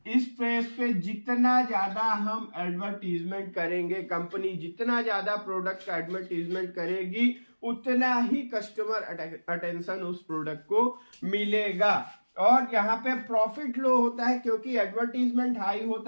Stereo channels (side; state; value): both; inverted; correlation -1.00